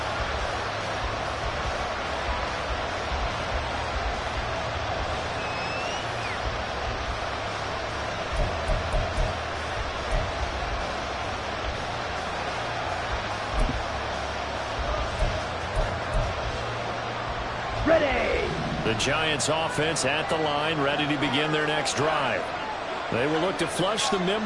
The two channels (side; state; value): both; identical; correlation 1.00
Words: Ready. The Giants offense at the line, ready to begin their next drive. They will look to flush the